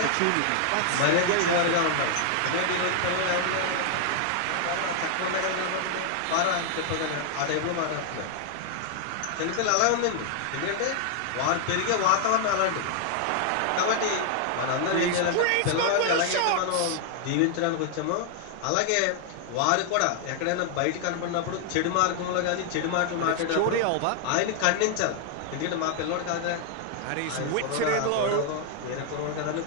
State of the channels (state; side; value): different; both; correlation 0.00